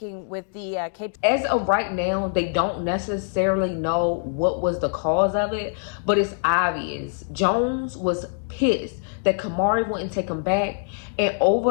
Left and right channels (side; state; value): right; silent; digital silence